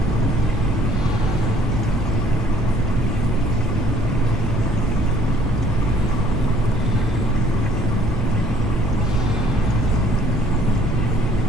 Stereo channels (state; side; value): normal; both; correlation 0.59